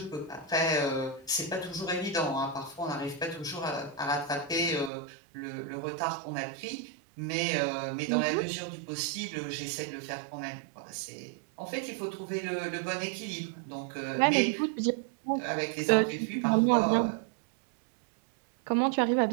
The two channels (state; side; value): drops out; left; at 4.9 s